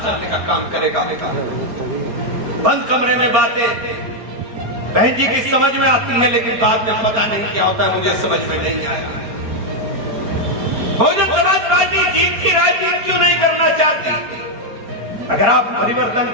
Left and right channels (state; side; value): late; left; 5.0 ms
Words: चलने का काम करेगा। बंद कमरे में बातें बहन जी की समझ में आती है, लेकिन बाद में पता नहीं क्या होता है, मुझे समझ में नहीं आया। बहुजन समाज पार्टी जीत की राजनीति क्यों नहीं करना चाहती? अगर आप परिवर्तन